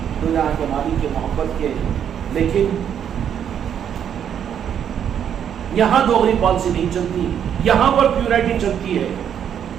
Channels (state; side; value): quieter; left; 8.9 dB